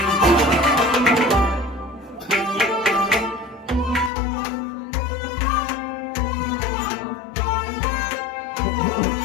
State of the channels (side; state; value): right; drops out; at 4.1 s